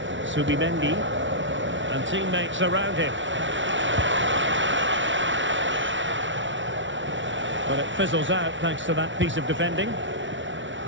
Subimendi and teammates around him. But it fizzles out thanks to that piece of defending.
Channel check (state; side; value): late; left; 0.55 ms